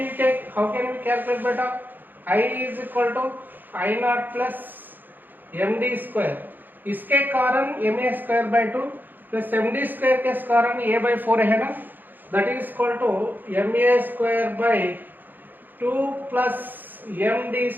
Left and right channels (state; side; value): late; left; 0.089 ms